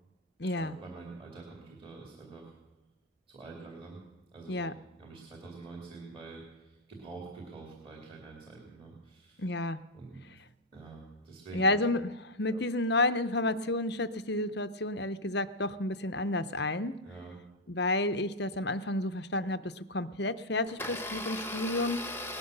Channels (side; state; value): both; normal; correlation -0.01